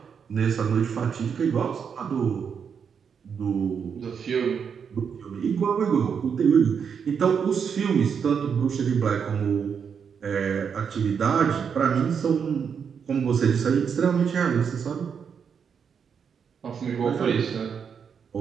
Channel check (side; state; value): left; quieter; 6.8 dB